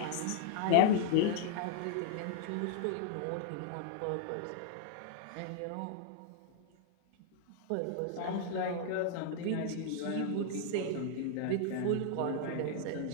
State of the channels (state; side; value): different; both; correlation -0.01